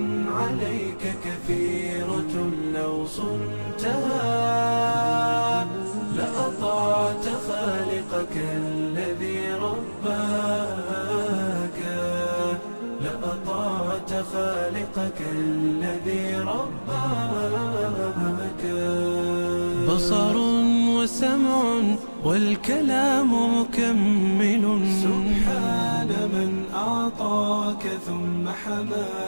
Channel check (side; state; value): both; inverted; correlation -1.00